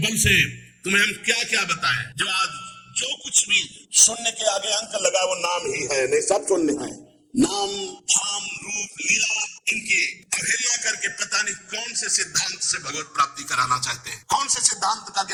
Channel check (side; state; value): both; identical; correlation 1.00